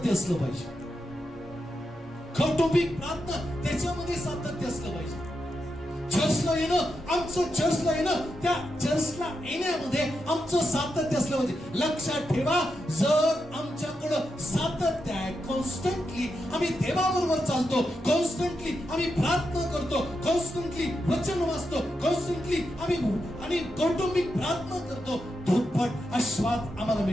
असलं पाहिजे. कौटुंबिक प्रार्थना त्याच्यामध्ये सातत्य असलं पाहिजे. चर्चला येणं, आमचं चर्चला येणं, त्या चर्चला येण्यामध्ये आमचं सातत्य असलं पाहिजे. लक्षात ठेवा, जर आमच्याकडं सातत्य आहे, कॉन्स्टंटली आम्ही देवाबरोबर चालतो, कॉन्स्टंटली आम्ही प्रार्थना करतो, कॉन्स्टंटली वचन वाचतो, कॉन्स्टंटली आम्ही कौटुंबिक प्रार्थना करतो, दुप्पट आशीर्वाद आम्हाला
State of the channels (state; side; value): normal; both; correlation 0.86